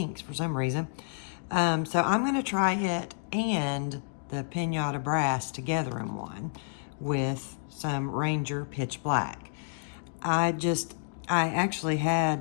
for some reason. So I'm gonna try it and the Pinata Brass together in one with some Ranger Pitch Black. I actually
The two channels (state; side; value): silent; right; digital silence